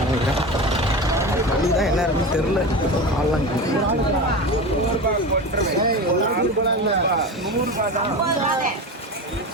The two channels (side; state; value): both; normal; correlation 0.26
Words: நினைக்கிறேன். மணி தான் என்ன இருக்குன்னு தெரில. ஆள்லாம்